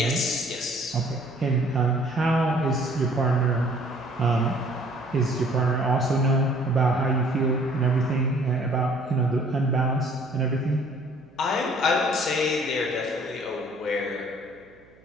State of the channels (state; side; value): noise; right; hum, 28 dB below the sound